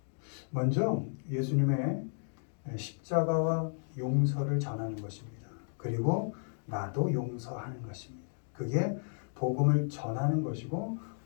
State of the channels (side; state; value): right; silent; digital silence